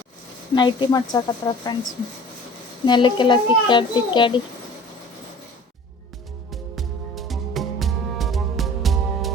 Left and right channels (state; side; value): normal; both; correlation 0.44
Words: ನೈಟಿ ಮಾಡ್ಸಕತ್ರ ಫ್ರೆಂಡ್ಸ್, ನೆಲಕ್ಕೆಲ್ಲ ತಿಕ್ಕಾಡಿ